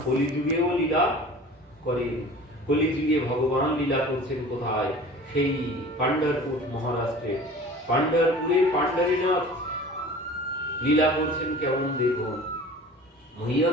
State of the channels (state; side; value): normal; both; correlation 0.41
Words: কলিযুগেও লীলা করে। কলিযুগে ভগবান লীলা করছেন কোথায়? সেই পান্ডারপুর মহারাষ্ট্রে। পান্ডারপুরে পান্ডারীনাথ লীলা করছেন কেমন দেখুন।